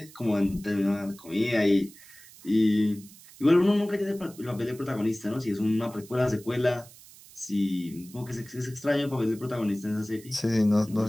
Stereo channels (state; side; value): noise; right; hiss, 21 dB below the sound